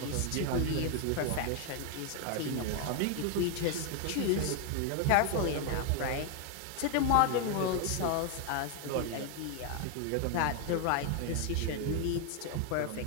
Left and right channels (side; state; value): both; different; correlation 0.01